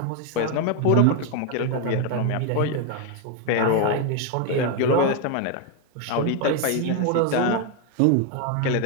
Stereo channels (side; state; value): both; different; correlation 0.01